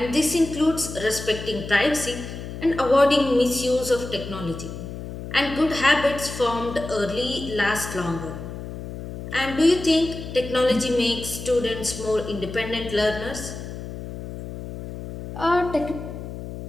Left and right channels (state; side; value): noise; left; hum, 9 dB below the sound